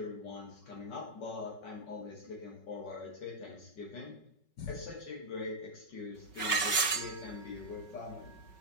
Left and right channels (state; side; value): late; right; 5.3 ms